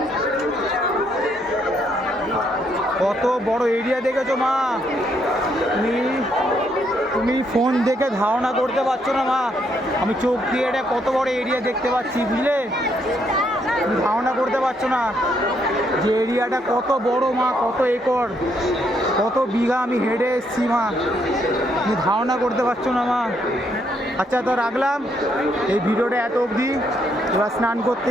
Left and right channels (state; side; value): normal; both; correlation 0.73